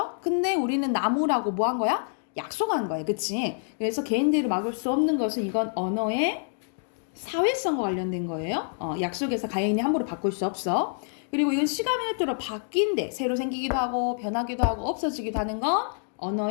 근데 우리는 나무라고 뭐 한 거야? 약속한 거예요. 그치? 그래서 개인들을 막을 수 없는 것은 이건 언어의 사회성과 관련된 거예요. 약속에서 개인이 함부로 바꿀 수 없어. 그리고 이건 시간에 따라 바뀐대. 새로 생기기도 하고 변하기도 하고 없어지기도 하는 건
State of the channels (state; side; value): silent; right; digital silence